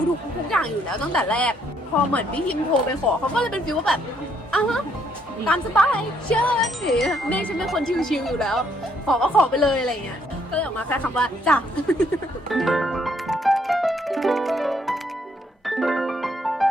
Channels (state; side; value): normal; both; correlation 0.70